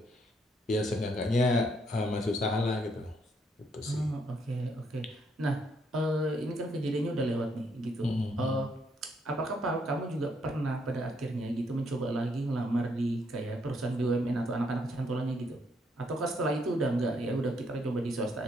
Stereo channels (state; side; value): normal; both; correlation 0.73